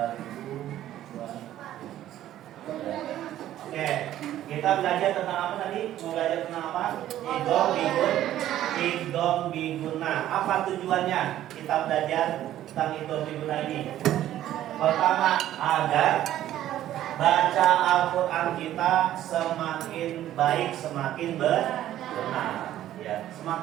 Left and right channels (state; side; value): quieter; left; 12.7 dB